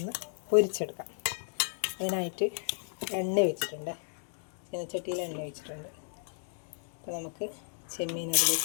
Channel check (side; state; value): right; silent; digital silence